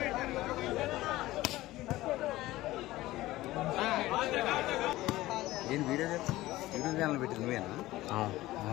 ఏం వీడియో ఛానల్ పెట్టింది నువ్వేనా?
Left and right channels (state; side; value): quieter; right; 17.1 dB